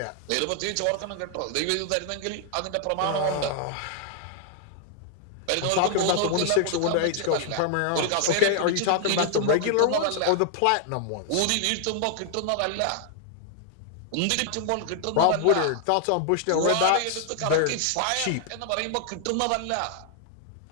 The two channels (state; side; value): different; both; correlation 0.00